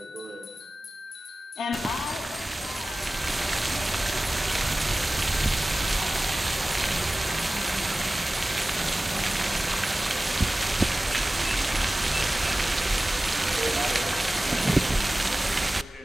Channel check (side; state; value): both; normal; correlation 0.97